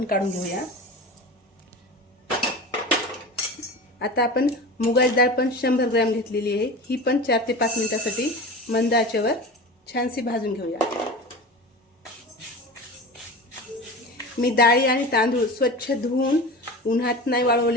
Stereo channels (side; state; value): both; normal; correlation 0.32